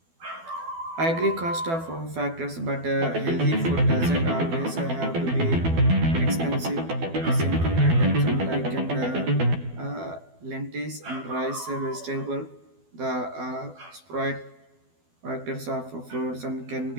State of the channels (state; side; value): late; left; 12 ms